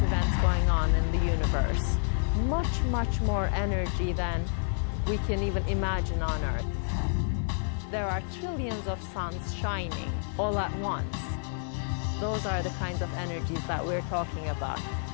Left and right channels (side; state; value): right; silent; 58 dB below the other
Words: events going on in the universe. Much, much more energy than we can even imagine on Earth. There are trillions of suns shining all at once. Those are the kinds of energies that we're talking about.